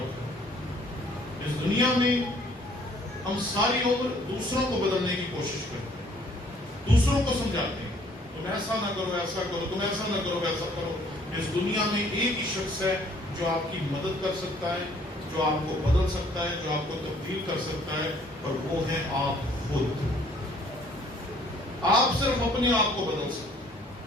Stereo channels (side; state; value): both; normal; correlation 0.60